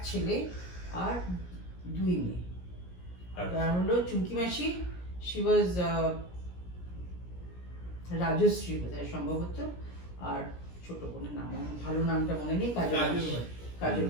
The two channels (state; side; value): late; right; 17 ms